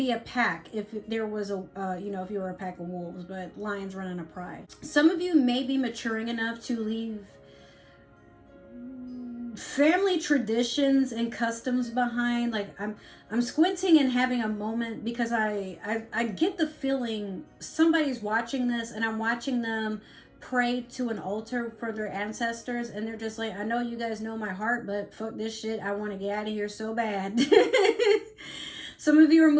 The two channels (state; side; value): identical; both; correlation 1.00